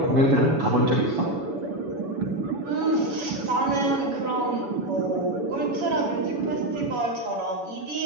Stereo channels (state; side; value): late; left; 7.1 ms